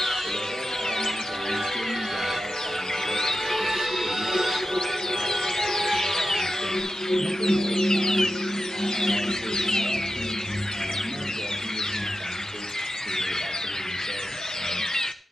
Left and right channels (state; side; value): normal; both; correlation 0.90